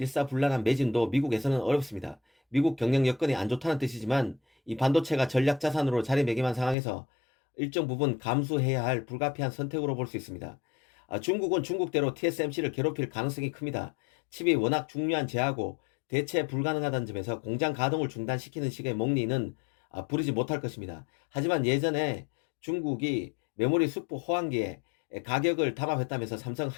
매진도 미국에서는 어렵습니다. 미국 경영 여건이 안 좋다는 뜻이지만 이 반도체가 전략 자산으로 자리매김한 상황에서 일정 부분 감수해야 할 불가피한 선택으로 볼 수 있습니다. 중국은 중국대로 TSMC를 괴롭힐 가능성이 큽니다. 칩이 워낙 중요한 재하고 대체 불가능하다는 점에서 공장 가동을 중단시키는 식의 목리는 부리지 못할 것입니다. 하지만 예전에 중국이 메모리 수프 호황기에 가격을 담합했다면서 삼성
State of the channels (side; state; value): right; drops out; at 6.8 s